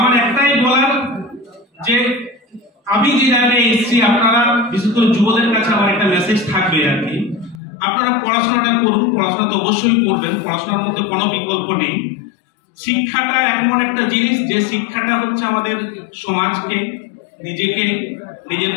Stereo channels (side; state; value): right; drops out; at 7.6 s